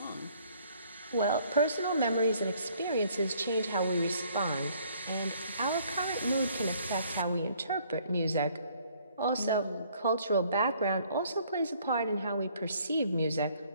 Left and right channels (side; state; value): both; inverted; correlation -0.62